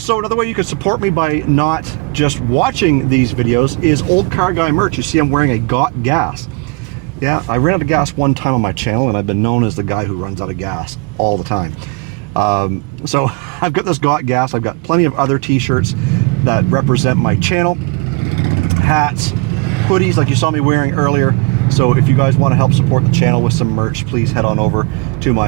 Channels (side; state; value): left; quieter; 28.3 dB